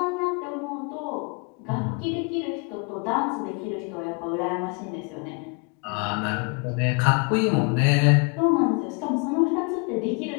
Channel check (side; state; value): right; quieter; 33.7 dB